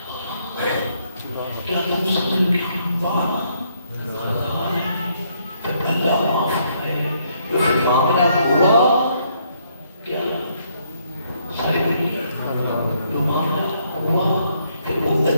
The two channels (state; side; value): inverted; both; correlation -0.71